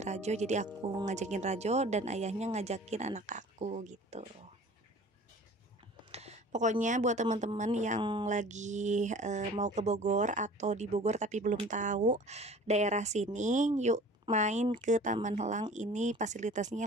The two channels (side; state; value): both; normal; correlation 0.45